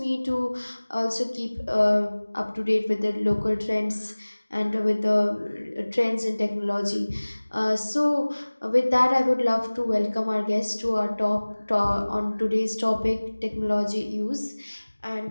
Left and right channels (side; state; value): both; inverted; correlation -1.00